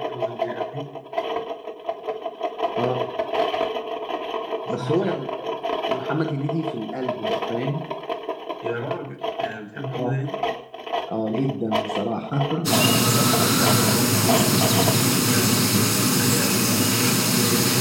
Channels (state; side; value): identical; both; correlation 1.00